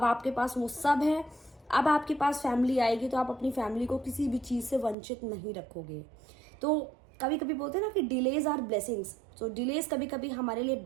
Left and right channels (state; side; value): drops out; left; at 5.0 s